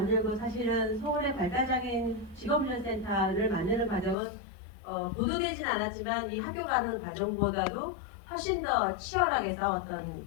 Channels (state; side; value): drops out; right; at 4.2 s